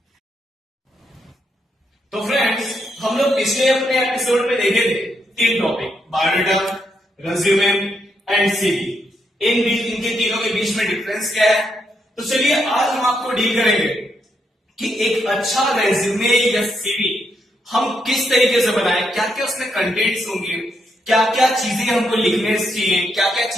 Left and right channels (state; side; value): normal; both; correlation 0.79